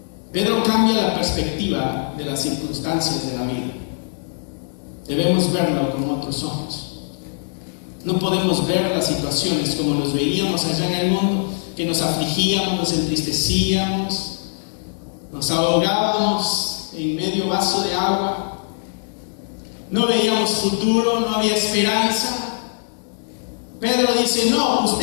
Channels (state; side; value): silent; right; 65 dB below the other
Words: Pedro cambia la perspectiva de las circunstancias de la vida. Debemos verlo con otros ojos. No podemos ver las situaciones como los veíamos allá en el mundo, que nos afligíamos, nos entristecíamos, nos ahogábamos en medio vaso de agua. No veíamos futuro, no había esperanza. Pedro dice: no,